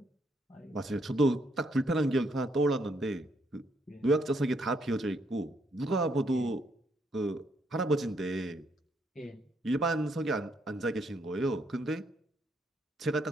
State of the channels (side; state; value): both; normal; correlation 0.73